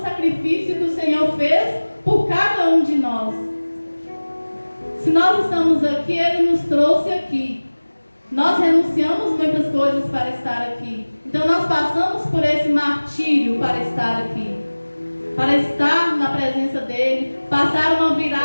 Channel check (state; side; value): inverted; both; correlation -1.00